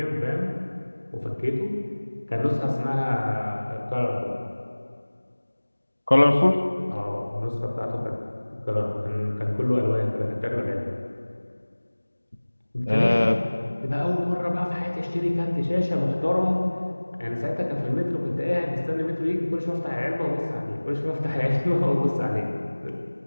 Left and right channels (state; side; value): inverted; both; correlation -1.00